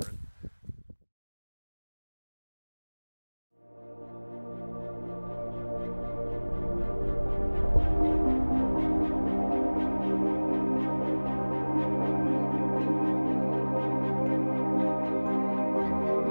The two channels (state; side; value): inverted; both; correlation -1.00